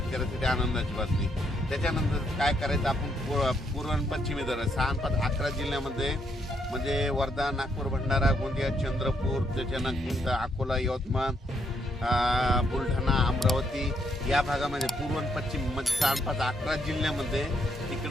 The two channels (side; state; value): both; normal; correlation 0.74